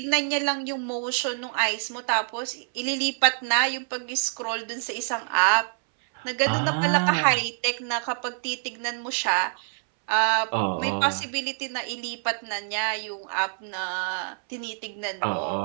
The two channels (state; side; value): silent; left; 61 dB below the other